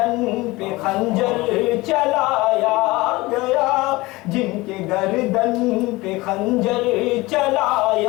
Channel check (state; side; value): quieter; right; 21.2 dB